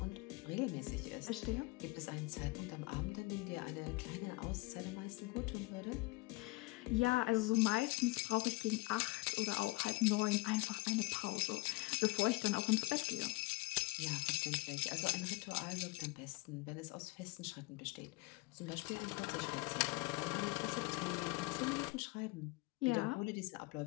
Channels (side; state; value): right; quieter; 24.0 dB